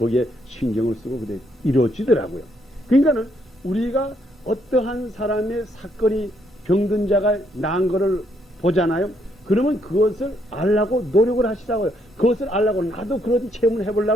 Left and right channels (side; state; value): both; normal; correlation 0.73